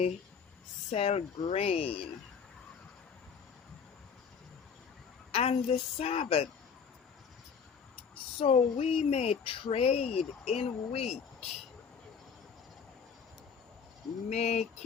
sell grain and the Sabbath, so we may trade in wheat,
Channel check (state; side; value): quieter; right; 6.4 dB